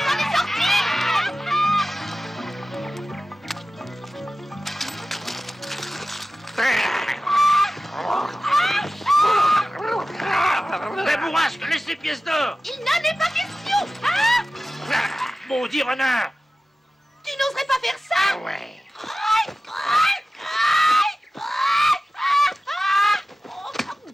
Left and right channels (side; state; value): both; normal; correlation 0.95